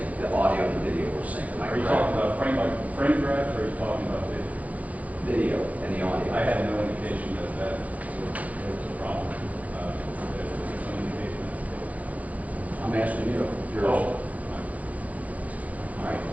the audio and the video were synced, am I Are you correct? talking about frame by frame grabs, or are you talking about video? Video and the audio. I had no indication that was a problem. There's no indication that's I'm asking you. the case. All right,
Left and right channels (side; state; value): left; late; 0.073 ms